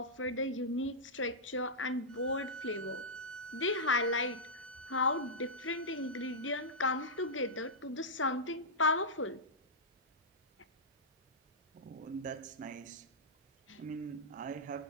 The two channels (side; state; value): both; normal; correlation -0.12